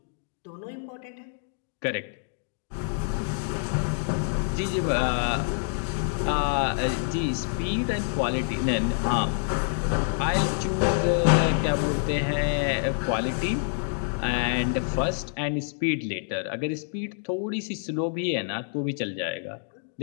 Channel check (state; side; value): silent; right; digital silence